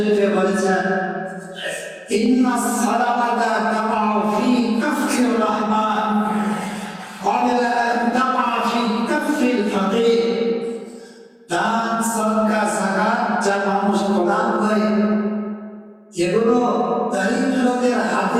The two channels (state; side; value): identical; both; correlation 1.00